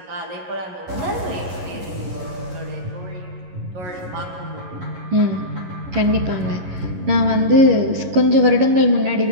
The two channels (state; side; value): late; left; 11 ms